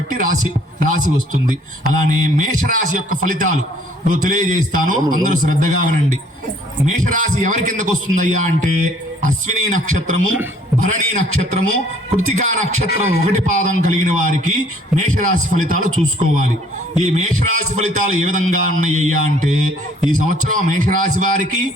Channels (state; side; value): normal; both; correlation 0.59